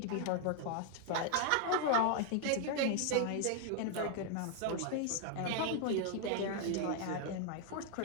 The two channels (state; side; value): different; both; correlation 0.00